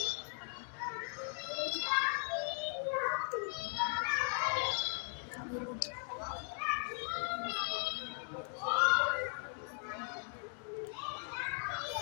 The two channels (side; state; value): right; silent; 52 dB below the other